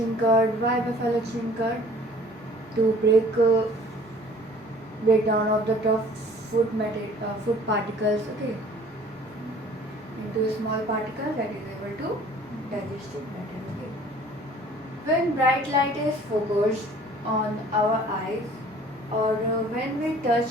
curd. Why buffalo chewing curd? To break down of the tough food particles. Okay, into a small particle that is able to digest it better. Okay. When bright light is focused on our eyes, or when we touch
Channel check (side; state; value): both; normal; correlation 0.51